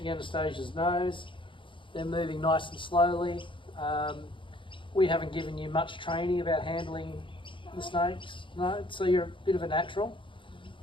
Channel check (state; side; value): late; right; 0.24 ms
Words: Anastasia's nose. They're moving nice and slowly. We haven't given you much training about handling the snakes, no, so you're a bit of a natural.